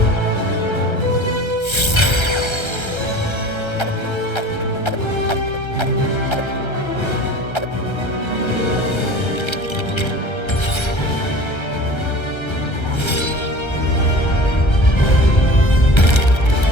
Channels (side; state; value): right; late; 1.3 ms